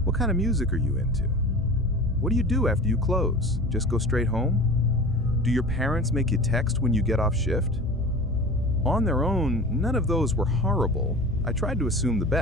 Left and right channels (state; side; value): normal; both; correlation 0.37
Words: What kind of music are you into? What do you do after you close? Just go straight home? Do your parents make you text when you get off shift? On their own, none of those were horrible. I tried to assume the